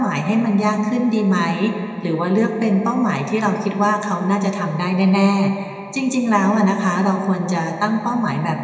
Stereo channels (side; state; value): both; identical; correlation 1.00